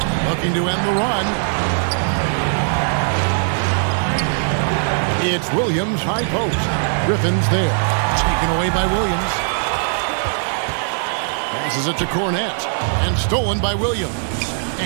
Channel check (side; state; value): left; silent; digital silence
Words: Looking to end the run. It's Williams, high post. Griffin's there. Taken away by Williams. Passes it to Cornette. And stolen by Williams.